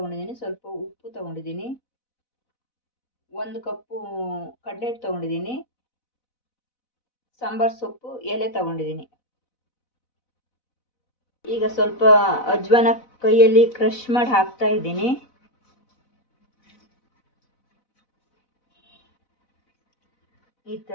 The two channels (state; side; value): late; right; 4.0 ms